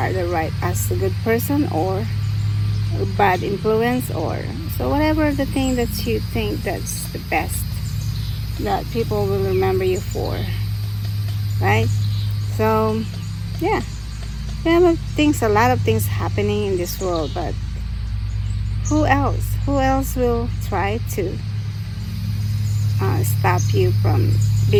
as a good person or a bad influence, or so whatever the thing that you think that's the best that people will remember you for, right? So yeah, there are a lot of things happening in this world, but who else will try to stop you from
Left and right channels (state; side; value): identical; both; correlation 1.00